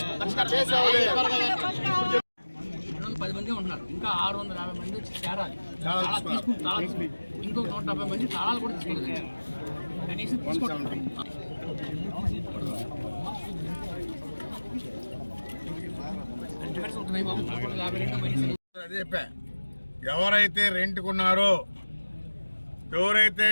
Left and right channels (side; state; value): both; inverted; correlation -1.00